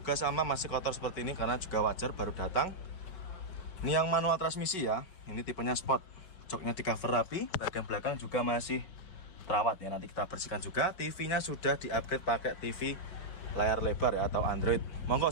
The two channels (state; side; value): late; right; 5.3 ms